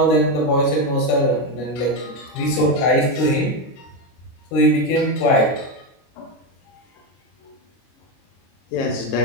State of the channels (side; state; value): right; late; 22 ms